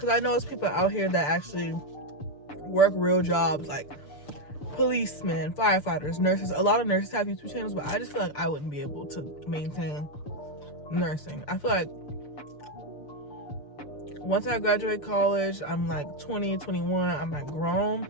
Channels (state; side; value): late; right; 6.9 ms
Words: I know there's people out here that actually work real jobs, like policemen, firefighters, nurses. A lot of nurses have YouTube channels, but I just feel like I wouldn't be able to maintain nursing. I feel like once I graduate college, I'm like 20, 21, I'm like grown.